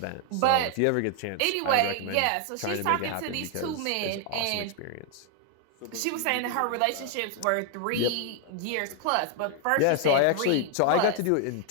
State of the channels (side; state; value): both; different; correlation 0.00